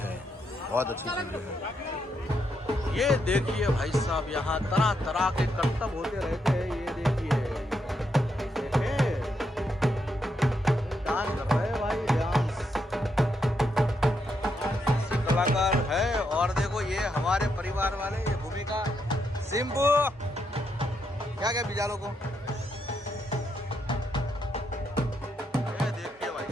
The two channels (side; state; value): both; normal; correlation 0.79